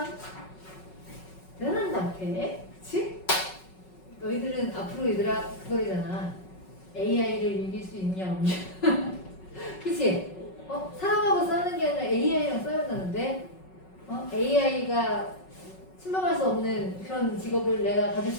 대단한 것 같아. 그치? 너희들은 앞으로 얘들아 그거잖아. AI를 이길 수 있냐 없냐. 그치? 사람하고 싸우는 게 아니라 AI랑 싸운다는데 AI가 침범할 수 없는 그런 직업을 내가 가질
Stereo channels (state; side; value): late; right; 5.4 ms